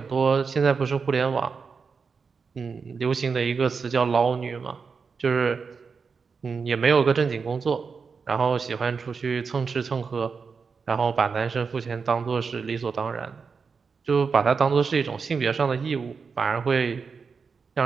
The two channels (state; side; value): quieter; left; 5.3 dB